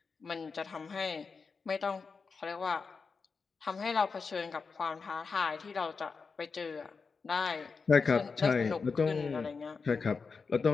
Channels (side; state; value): right; quieter; 4.9 dB